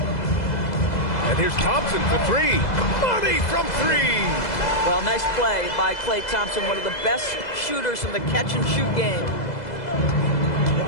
And here's Thompson for three. Money from three. Well, nice play by Klay Thompson, one of the best shooters in the catch-and-shoot game.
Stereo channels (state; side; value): late; right; 2.0 ms